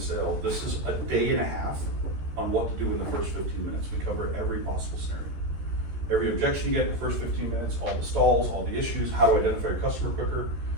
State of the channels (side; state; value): left; late; 14 ms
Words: sale, this is a day and a half on what to do in the first 15 minutes. We cover every possible scenario. Every objection you get in the first 15 minutes, all the stalls, all the issues, how to identify your customer quicker.